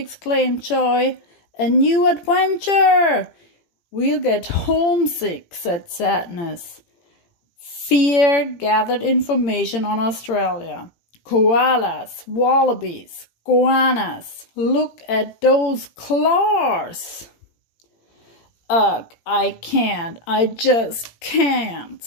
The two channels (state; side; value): late; right; 18 ms